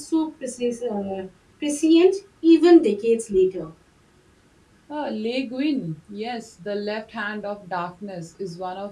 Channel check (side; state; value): both; identical; correlation 1.00